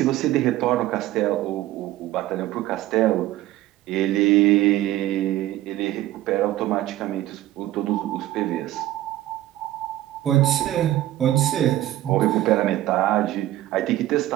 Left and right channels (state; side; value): quieter; left; 14.8 dB